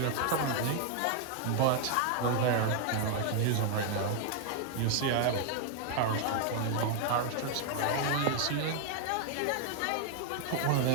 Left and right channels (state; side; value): different; both; correlation 0.00